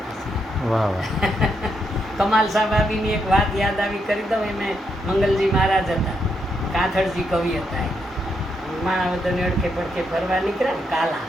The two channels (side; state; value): both; normal; correlation 0.80